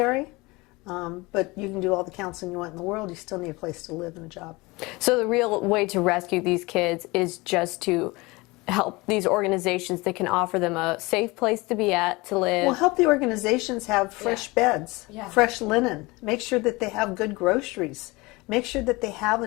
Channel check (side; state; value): right; quieter; 23.4 dB